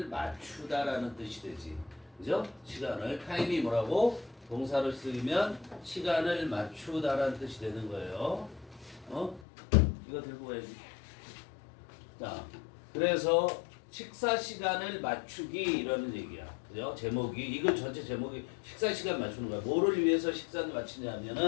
맞추다라는 뜻이 되지. 그죠? 시간을 타임이 뭐라고? 동사로 쓰이면 시간을 맞추다라는 뜻이 되는 거예요. 이거 들고 가야지. 자, 그래서 식사 시간을 맞추기 이라는 얘기야. 그죠? 제목이 이거 전체 제목이 식사 시간 맞추는 거야. 뭐를 위해서 식사를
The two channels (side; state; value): right; drops out; at 9.5 s